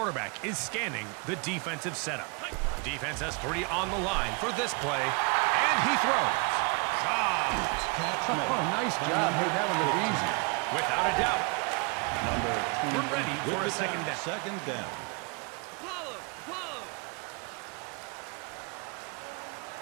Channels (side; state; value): left; quieter; 32.5 dB